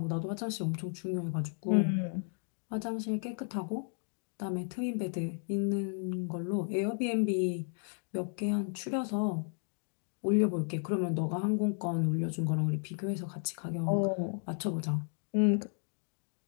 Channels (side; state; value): right; silent; 55 dB below the other